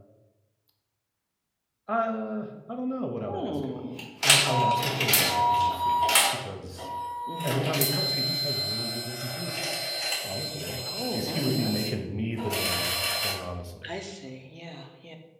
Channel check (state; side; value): identical; both; correlation 1.00